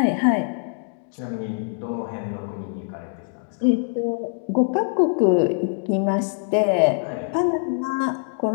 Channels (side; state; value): right; silent; digital silence